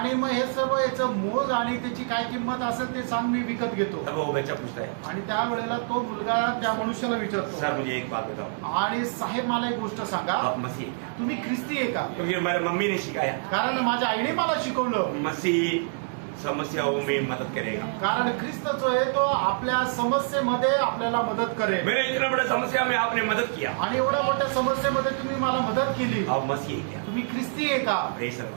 मग हे सर्व याचं मोज आणि त्याची काय किंमत असेल ते सांग मी विकत घेतो. तब वो बच्चा पूछता है, आणि त्यावेळेला तो मुलगा त्या मनुष्याला विचारतो, सर मुझे एक बात बताओ, आणि साहेब मला एक गोष्ट सांगा, आप मसीह हैं क्या? तुम्ही ख्रिस्ती आहे का? क्योंकि हमारी मम्मी ने सिखाया कारण माझ्या आईने मला शिकवलं. मसीह समस्याओं में मदद करेगा. कारण ख्रिस्त जो आहे तो आपल्या समस्येमध्ये आपल्याला मदत करेल. मेरे इतना बड़ा समस्या में आपने मदद किया, आणि एवढ्या मोठ्या समस्येमध्ये तुम्ही मला मदत केली. आप मसीह हैं क्या? तुम्ही ख्रिस्ती आहे का? Praise the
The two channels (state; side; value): silent; left; digital silence